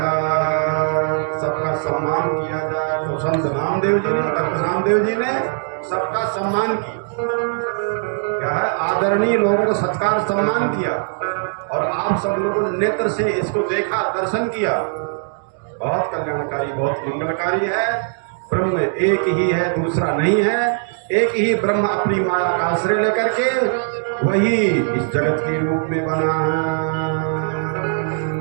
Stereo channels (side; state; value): left; silent; digital silence